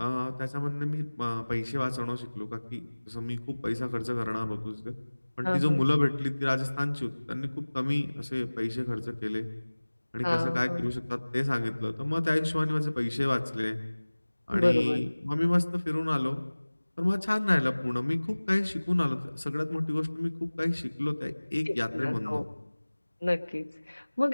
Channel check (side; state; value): both; inverted; correlation -1.00